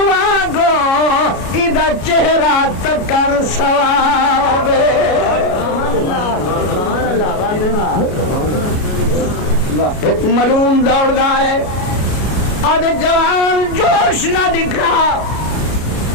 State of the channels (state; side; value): late; right; 33 ms